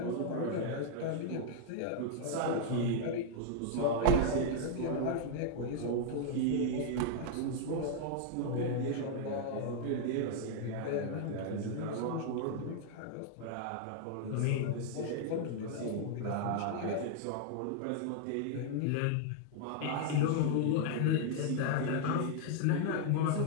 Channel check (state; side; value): different; both; correlation -0.01